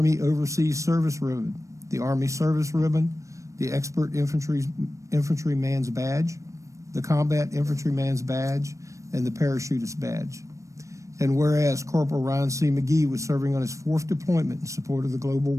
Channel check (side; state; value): left; late; 0.15 ms